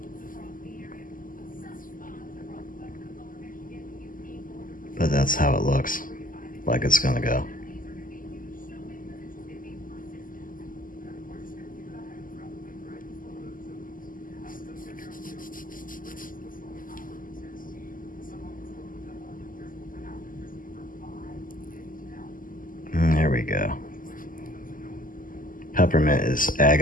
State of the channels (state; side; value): late; right; 0.40 ms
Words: But that's how it looks like it's gonna go. There we go. Peppermint is